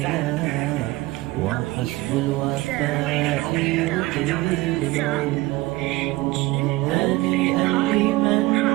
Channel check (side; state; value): left; quieter; 19.5 dB